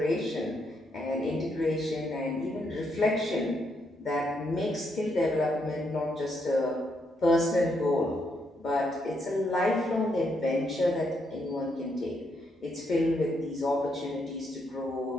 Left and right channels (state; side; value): normal; both; correlation 0.77